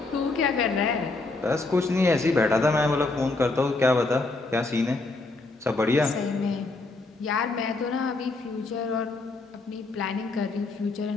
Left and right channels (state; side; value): quieter; right; 3.4 dB